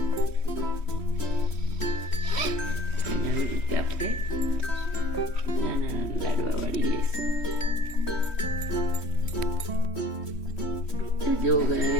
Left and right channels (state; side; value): late; right; 3.1 ms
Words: આવી રીતે આપણે નાના લાડવા વાળી લઈશું. જો